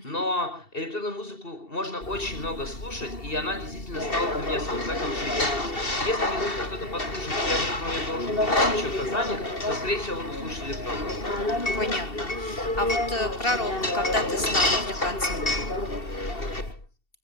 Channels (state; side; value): late; right; 2.7 ms